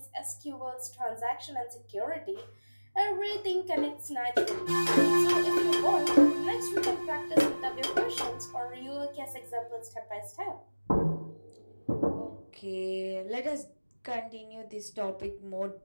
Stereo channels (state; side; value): inverted; both; correlation -1.00